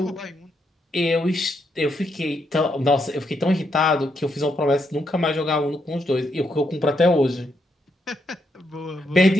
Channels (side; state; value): both; normal; correlation 0.79